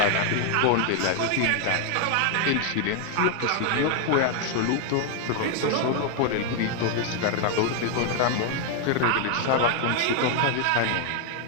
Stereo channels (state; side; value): different; both; correlation 0.01